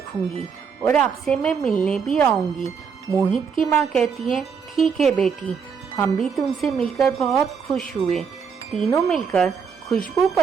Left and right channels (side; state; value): left; quieter; 6.3 dB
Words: और आपसे मैं मिलने भी आऊंगी। मोहित की माँ कहती है, ठीक है बेटी, हम भी तुमसे मिलकर बहुत खुश हुए। तीनों मिलकर खुशबू